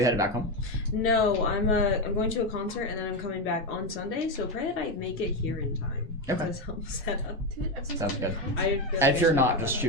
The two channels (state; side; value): normal; both; correlation 0.11